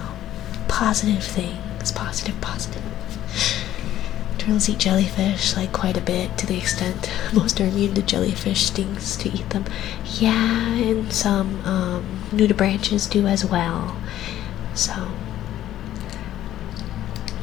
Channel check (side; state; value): right; quieter; 12.7 dB